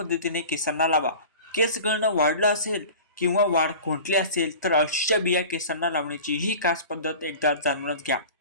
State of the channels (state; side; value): inverted; both; correlation -0.38